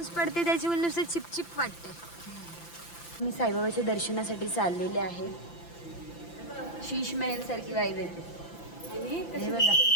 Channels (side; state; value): right; late; 5.9 ms